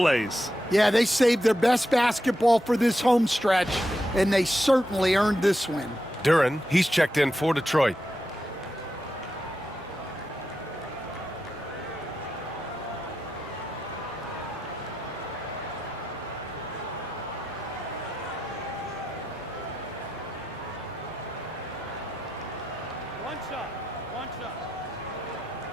Yeah, they saved their best basketball for this home stretch, and they certainly earned this win. Duren, he's checked in for Detroit.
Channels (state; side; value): normal; both; correlation 0.87